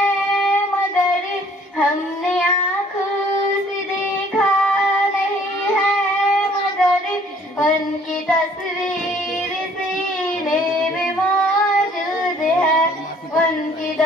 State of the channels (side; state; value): both; normal; correlation 0.58